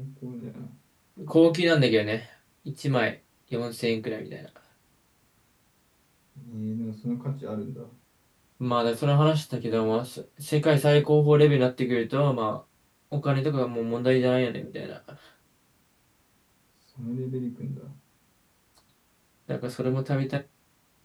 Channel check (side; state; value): both; identical; correlation 1.00